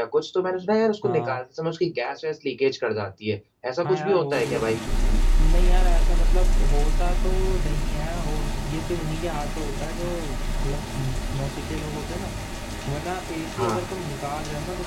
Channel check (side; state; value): both; identical; correlation 1.00